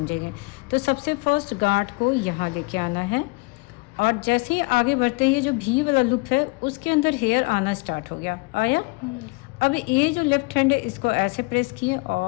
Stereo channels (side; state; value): right; quieter; 27.2 dB